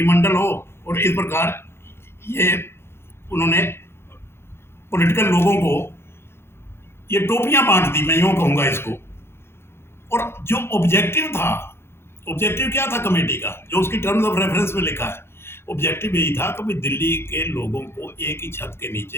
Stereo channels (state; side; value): late; right; 0.12 ms